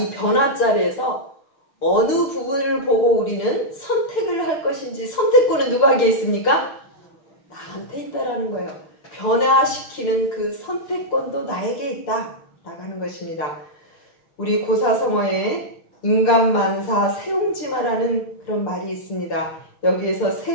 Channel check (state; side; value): late; right; 6.8 ms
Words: 변화 자리에서 어느 부분을 보고 우리는 선택을 할 것인지, 선택권은 누구에게 있습니까? 나한테 있다라는 거예요. 변화시키는 그 선택권도 나에게 있다 나가는 것입니다. 우리 고사성어에 인간만사 세옹지마라는 그런 말이 있습니다. 여기에서